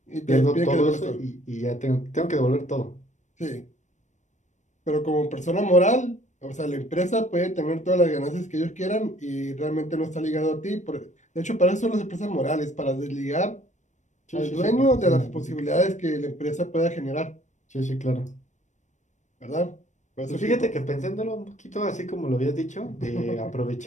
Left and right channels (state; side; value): late; right; 0.35 ms